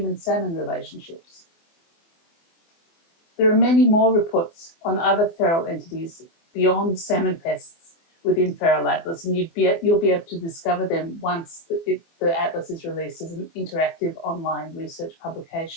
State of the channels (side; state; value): right; late; 24 ms